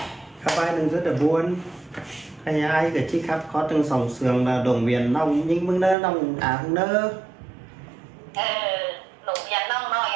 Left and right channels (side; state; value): left; drops out; at 6.0 s